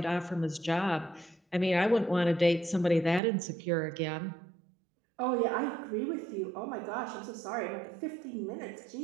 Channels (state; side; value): drops out; left; at 3.2 s